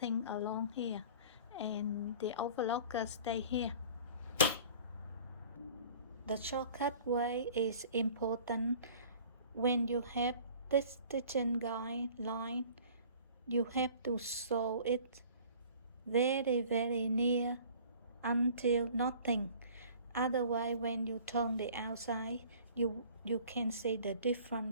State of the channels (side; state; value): both; inverted; correlation -0.48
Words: along here, and the overlocker stay here. The shortcut way is important. When you have this stitching guideline, you have to sew it very near until nothing. Otherwise, when you turn the outside, you can see the